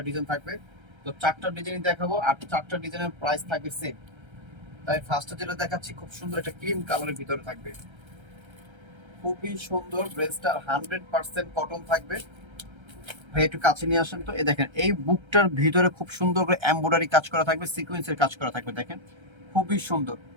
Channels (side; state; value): left; late; 1.3 ms